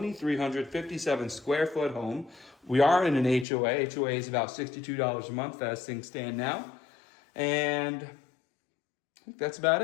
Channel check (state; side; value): drops out; right; at 3.5 s